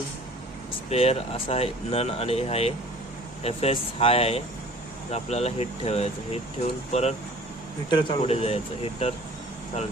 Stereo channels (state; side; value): normal; both; correlation 0.48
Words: स्पेअर असा आहे, नन आणि आहे FS हाय आहे, तर आपल्याला हिट ठेवायचं. हिट ठेवून परत हिटर पुढे जायचं, हिटर चालू